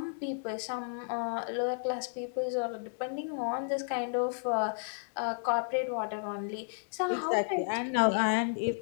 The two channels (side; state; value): right; silent; digital silence